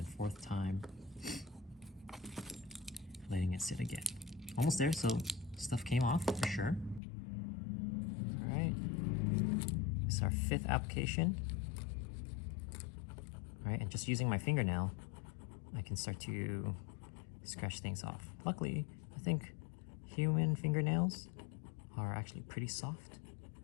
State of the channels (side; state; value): right; drops out; at 7.0 s